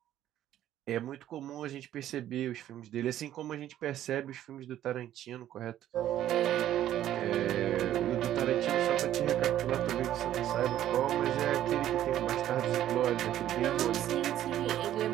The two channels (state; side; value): quieter; left; 12.2 dB